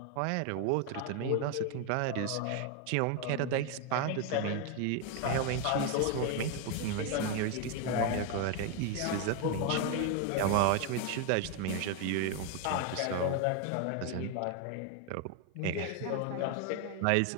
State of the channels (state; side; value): different; both; correlation 0.01